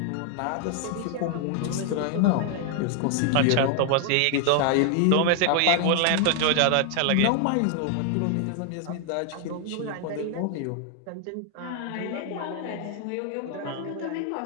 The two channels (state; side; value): different; both; correlation 0.00